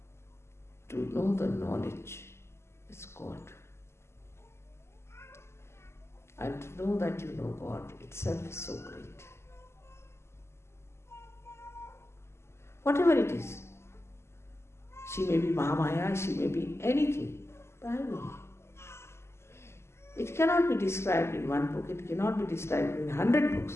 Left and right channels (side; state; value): right; late; 0.13 ms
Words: to know the knowledge, it's God. And to know that you know God itself is so great. Whatever it is, she may be Mahamaya, she may be anything, but I know. It cannot be described in one book, it cannot be described in 100